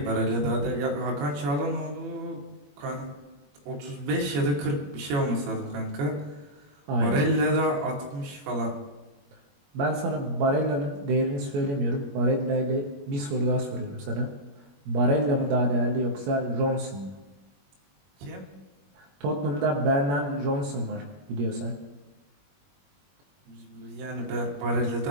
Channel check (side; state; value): left; late; 21 ms